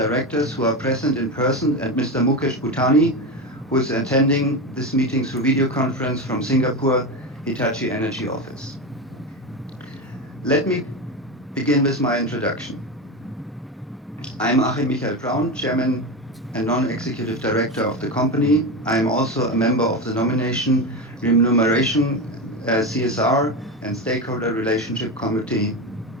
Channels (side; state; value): both; normal; correlation 0.18